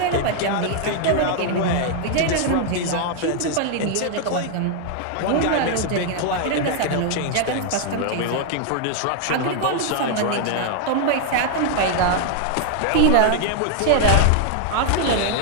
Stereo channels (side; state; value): both; different; correlation 0.00